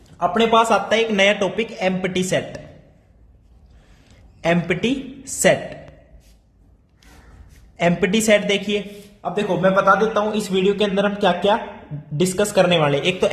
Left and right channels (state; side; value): identical; both; correlation 1.00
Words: अपने पास आता है एक नया topic, empty set. Empty set, empty set देखिए। अब देखो मैं बता देता हूं इस वीडियो के अंदर हम क्या क्या डिस्कस करने वाले। एक तो